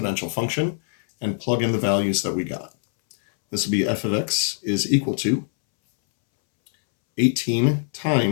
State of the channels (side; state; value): right; silent; 64 dB below the other